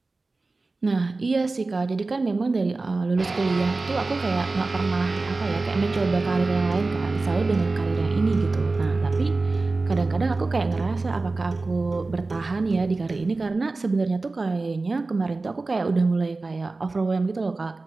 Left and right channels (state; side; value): quieter; left; 3.5 dB